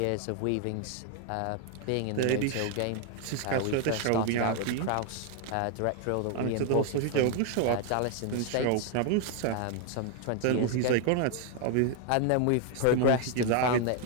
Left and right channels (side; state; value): both; different; correlation 0.00